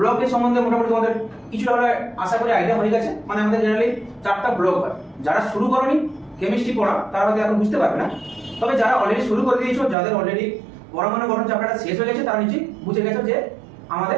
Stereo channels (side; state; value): left; drops out; at 10.0 s